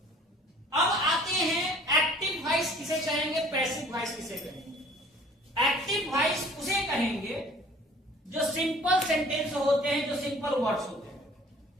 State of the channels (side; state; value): both; normal; correlation 0.51